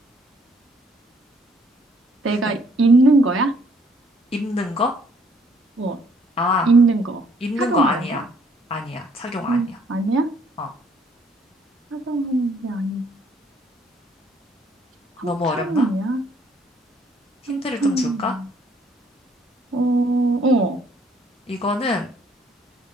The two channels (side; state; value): both; normal; correlation 0.64